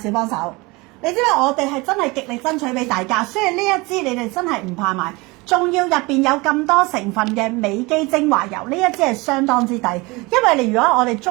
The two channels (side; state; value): left; quieter; 24.5 dB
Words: 幫手，你知唔知我哋係真係極力爭取俾大家，所以呢一支你哋真係唔怕買。仲要入邊有咁多成分嘅美肌精華油，呢一支係相當之抵。因為你如果我哋